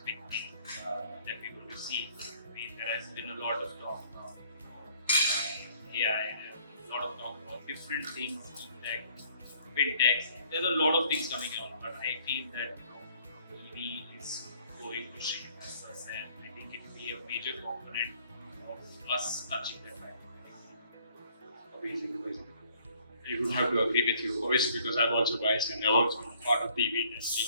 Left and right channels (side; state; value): both; inverted; correlation -0.61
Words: big thing that we're going to see. There has been a lot of talk about AI, and a lot of talk about different things, tech, fintechs. There's a lot of things coming out, but I feel that EV is going to shape us, and I think it will be a major component of us touching that right. Amazing. I would have to agree with you, obviously, because I'm also biased and I'm also part of the EV industry.